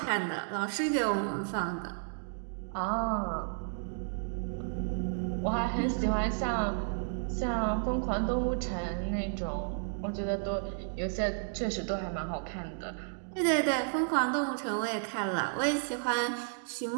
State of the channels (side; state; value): left; silent; digital silence